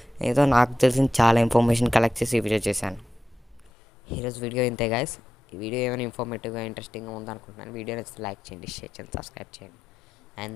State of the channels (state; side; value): normal; both; correlation 0.89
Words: ఏదో నాకు తెలిసిన చాలా ఇన్ఫర్మేషన్ కలెక్ట్ చేసి ఈ వీడియో చేశాను. ఈరోజు వీడియో ఇంతే గైస్. ఈ వీడియో ఏమైనా ఇన్ఫర్మేటివ్గా ఇంట్రెస్టింగ్గా ఉందనుకుంటున్నాను. వీడియో నచ్చితే లైక్ చేయండి, షేర్ చేయండి, సబ్స్క్రైబ్ చేయండి. And